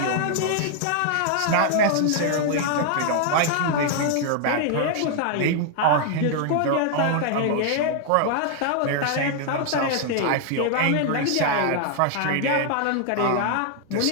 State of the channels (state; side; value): different; both; correlation 0.00